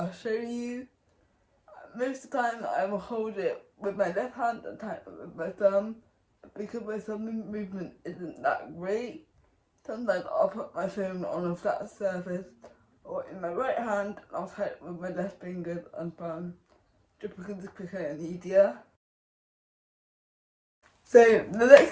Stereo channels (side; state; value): both; identical; correlation 1.00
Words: show you. Most of the time I will hold it with my left hand and type it with my thumb, because my thumb movement isn't that great. Sometimes I'll put my phone on a flat surface or in my right hand, and I'll type with my left fingers and thumb, just because it's quicker and easier. So the next